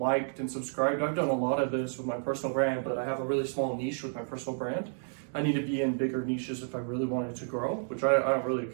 and subscribed. I've done a lot of this with my personal brand, but I have a really small niche with my personal brand. I need to be in bigger niches if I really wanted to grow, which I don't really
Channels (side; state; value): left; silent; digital silence